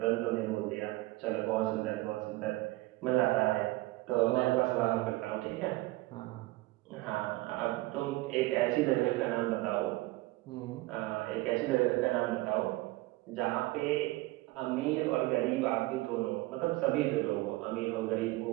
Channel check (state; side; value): quieter; left; 20.0 dB